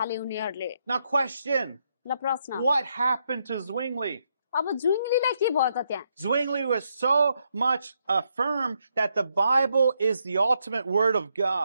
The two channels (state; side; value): inverted; both; correlation -0.78